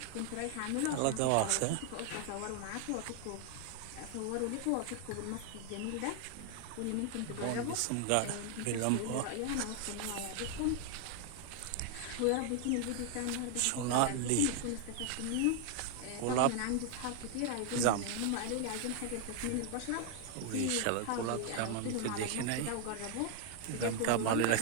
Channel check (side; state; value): both; different; correlation 0.00